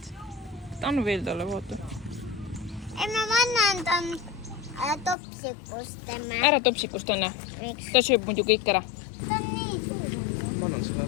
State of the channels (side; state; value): right; drops out; at 5.2 s